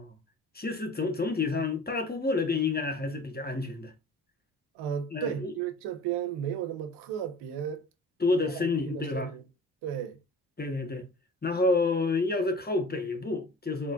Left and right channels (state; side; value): normal; both; correlation 0.42